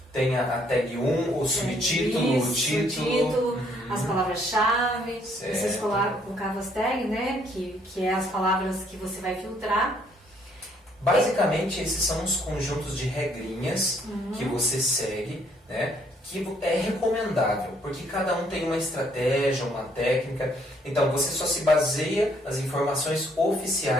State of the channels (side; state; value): both; normal; correlation 0.66